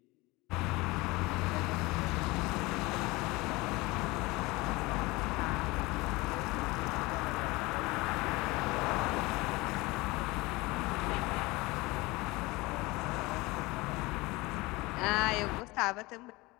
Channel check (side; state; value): right; quieter; 22.4 dB